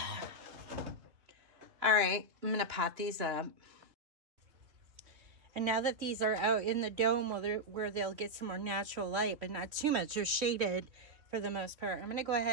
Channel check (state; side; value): late; left; 3.2 ms